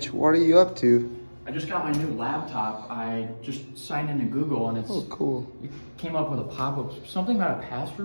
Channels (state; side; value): inverted; both; correlation -1.00